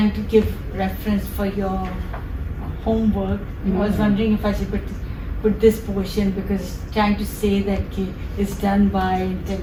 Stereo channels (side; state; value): both; identical; correlation 1.00